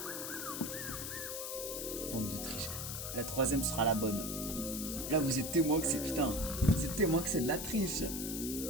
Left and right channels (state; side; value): noise; left; hiss, 5 dB below the sound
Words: Bande de triche. La troisième sera la bonne. Là, vous êtes témoin que c'est putain. Vous êtes témoin que c'est de la triche.